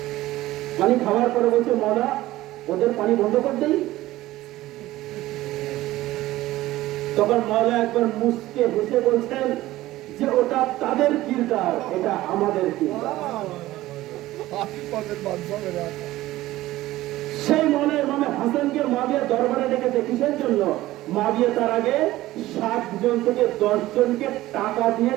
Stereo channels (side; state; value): left; quieter; 16.4 dB